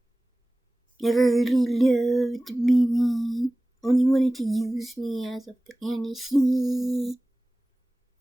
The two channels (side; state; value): both; normal; correlation 0.98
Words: Never really loved me. Only wanted to use me as a fantasy.